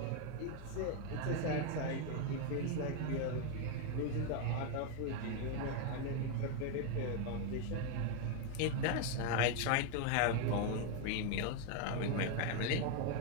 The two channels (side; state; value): both; different; correlation 0.01